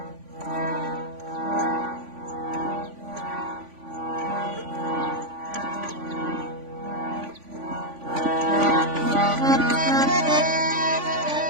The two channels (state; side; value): late; left; 3.5 ms